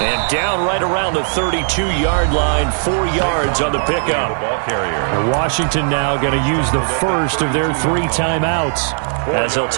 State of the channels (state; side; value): silent; left; 57 dB below the other